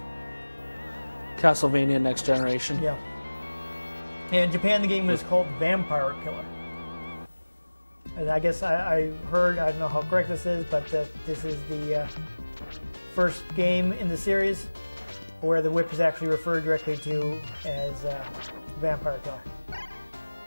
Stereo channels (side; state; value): both; inverted; correlation -1.00